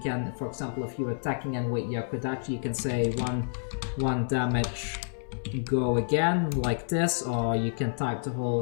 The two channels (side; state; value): right; silent; 59 dB below the other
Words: can, for example, if you're attacking in with your Kodachi, you can say one damage, go again, like this, or you can type the